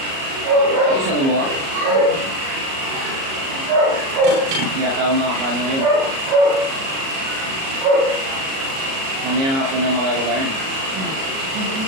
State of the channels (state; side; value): late; left; 37 ms